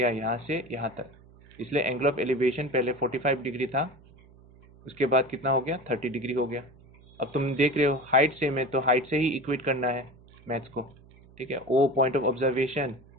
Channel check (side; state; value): right; noise; hum, 25 dB below the sound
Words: यहाँ से यहाँ तक, इसलिए एंगल ऑफ एलिवेशन पहले 45 डिग्री था, उसके बाद कितना हो गया, 30 डिग्री हो गया. अब तुम देख रहे हो हाइट सेम है, तो हाइट से ही इक्वेट करना है मैथ्स को, ठीक है. ओ पॉइंट ऑफ ऑब्जर्वेशन,